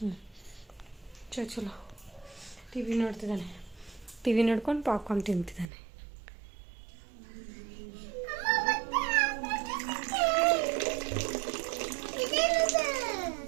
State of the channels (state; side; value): drops out; left; at 5.7 s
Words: ಚಲೋ ಟಿವಿ ನೋಡ್ತಿದ್ದಾನೆ. ಟಿವಿ ನೋಡ್ಕೊಂಡು ಪಾಪ್ಕಾರ್ನ್ ತಿಂತಿದ್ದಾನೆ.